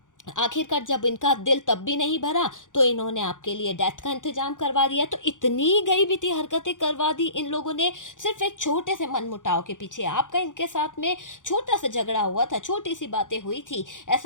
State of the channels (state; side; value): late; right; 0.87 ms